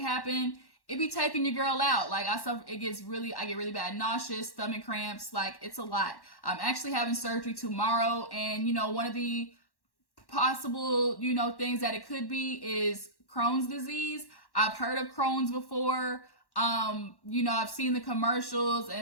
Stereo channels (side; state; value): right; late; 1.1 ms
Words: it be taking your girl out. Like I get really bad nauseous, stomach cramps, like it's a lot. I'm actually having surgery tomorrow, and one of the possible, things that it could be is Crohn's disease. I've heard of Crohn's before. I've seen the commercials,